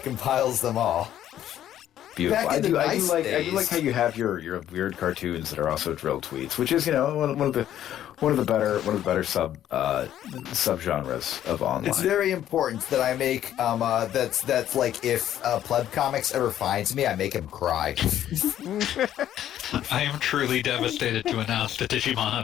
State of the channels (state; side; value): quieter; right; 11.5 dB